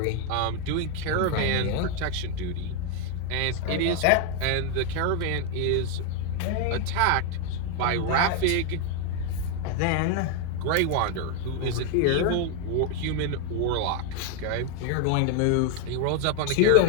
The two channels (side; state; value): both; different; correlation 0.00